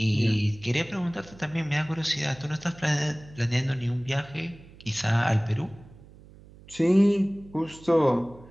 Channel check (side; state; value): right; noise; hum, 22 dB below the sound